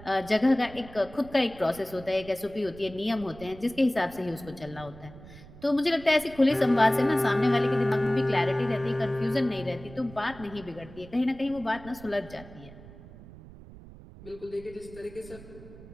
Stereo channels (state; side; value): noise; right; rumble, 18 dB below the sound